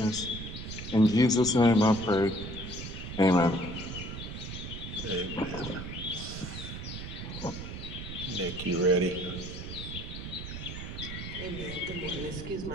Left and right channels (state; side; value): noise; right; rumble, 8 dB below the sound